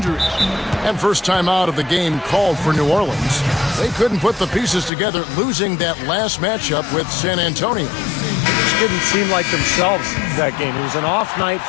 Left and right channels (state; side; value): drops out; right; at 4.9 s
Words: And first time out of the game called for New Orleans. They couldn't put the pieces together, losing that last matchup with San Antonio. Just didn't seem like themselves that game. It was an off night